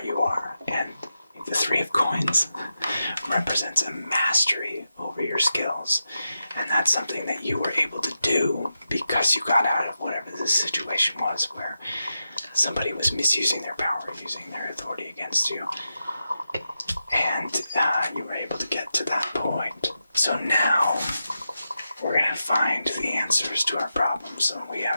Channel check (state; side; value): inverted; both; correlation -0.89